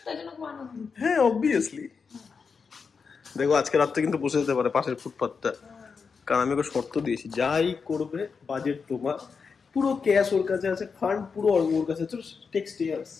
হ্যাঁ অবভিয়াসলি। দেখো আজকে রাত্রে কিন্তু বসে যেতে পারে পাশের ফুটপাথটা, কারণ আমি ওকে শর্ত দিয়েছি যাই করবে বাজেট তোমার, পুরো ক্যাশ ওর কাছে আছে, ফান্ড পুরো ওর কাছে আছে, টেক্সট ইয়ার্স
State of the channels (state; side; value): quieter; right; 5.5 dB